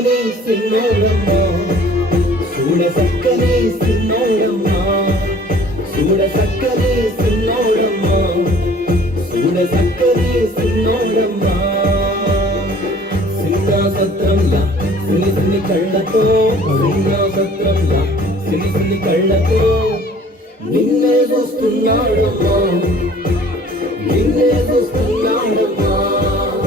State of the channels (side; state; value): both; normal; correlation 0.51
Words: సిన్నోడమ్మ చూడ సక్కని సిన్నోడమ్మ చూడ సక్కని సిన్నోడమ్మ చూడ సక్కని సిన్నోడమ్మ సీతా సత్రంలా సిని సిని కళ్ళతో సీతా సత్రంలా సిని సిని కళ్ళతో నిన్నే చూస్తున్నాడమ్మా నిన్నే చూస్తున్నాడమ్మా